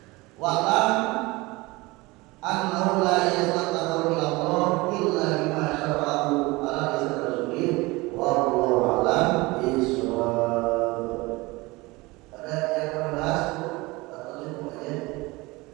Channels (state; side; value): quieter; left; 22.7 dB